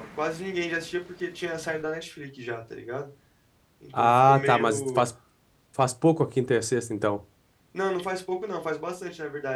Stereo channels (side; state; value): both; identical; correlation 1.00